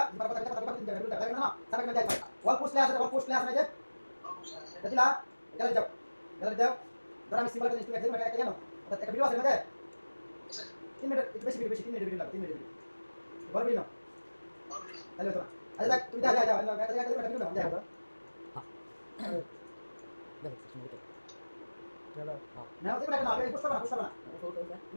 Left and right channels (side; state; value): both; inverted; correlation -1.00